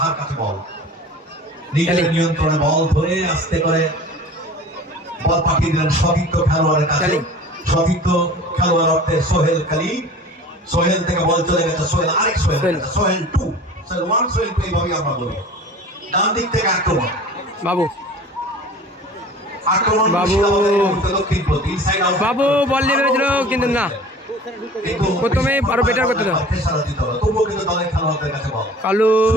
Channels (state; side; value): normal; both; correlation 0.42